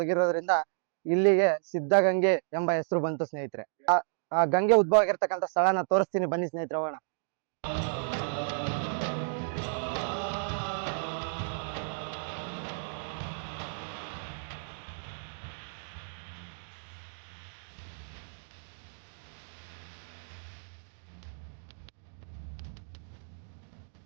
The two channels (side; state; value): left; silent; digital silence